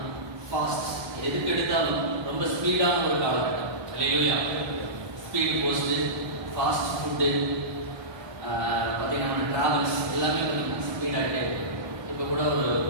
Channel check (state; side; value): late; left; 1.2 ms